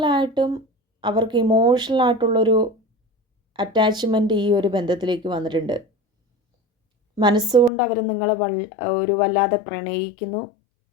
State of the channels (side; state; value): right; drops out; at 7.7 s